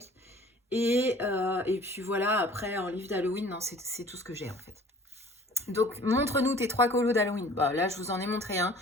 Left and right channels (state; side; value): normal; both; correlation 0.49